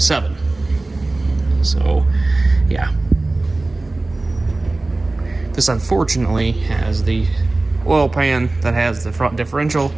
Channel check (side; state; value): left; quieter; 3.0 dB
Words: So, yeah. This unfortunately has the oil pan that has the front differential